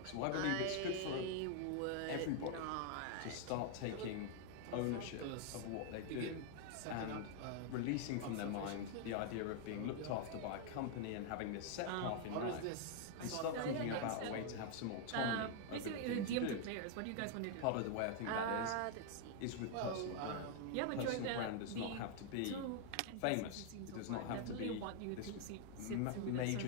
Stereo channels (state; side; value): different; both; correlation 0.00